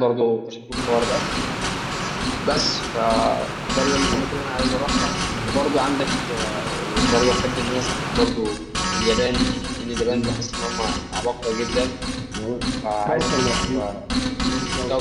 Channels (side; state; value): both; identical; correlation 1.00